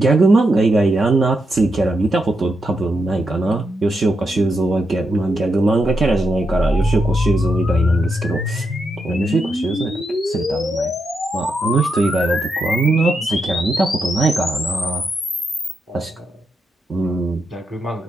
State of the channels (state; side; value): normal; both; correlation 0.83